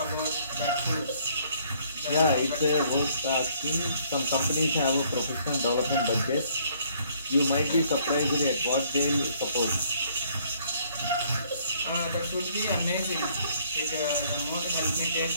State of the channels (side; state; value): both; inverted; correlation -0.63